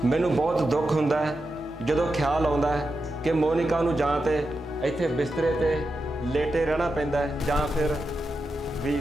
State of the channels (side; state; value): both; normal; correlation 0.89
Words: मैनू बहुत दुख हुंदा है जदों ख्याल आउंदा है कि मोनिका नूं जां ते इत्थे बिस्तरे ते लेटे रहना पैंदा है जां फिर